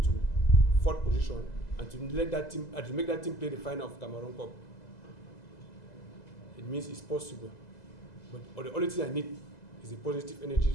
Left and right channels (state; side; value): late; right; 2.0 ms